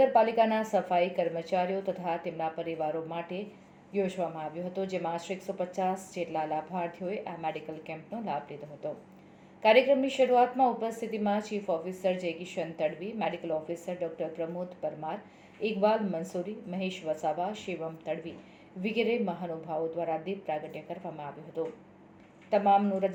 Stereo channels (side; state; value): both; identical; correlation 1.00